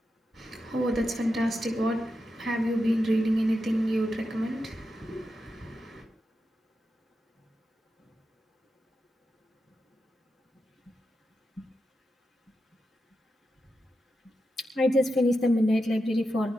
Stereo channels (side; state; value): both; normal; correlation 0.88